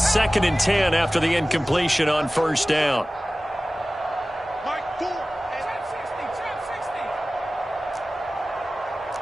and 10 after the incompletion on 1st down.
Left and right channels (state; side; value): normal; both; correlation 0.97